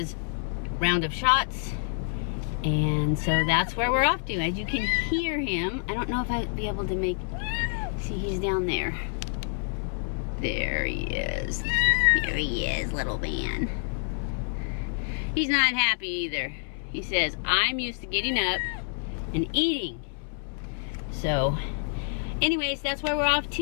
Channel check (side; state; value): right; silent; 60 dB below the other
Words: round of shots. And so that's where we're off to. As you can hear him, I don't know if I'd be able to see, he's down there. There he is. There he is, little man. He's not happy either. He says, I'm used to getting up and eating. So, anyways, that's where we're off